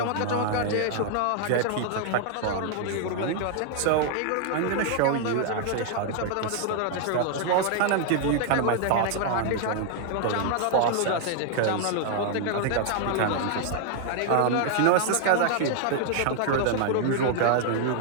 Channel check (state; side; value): different; both; correlation 0.00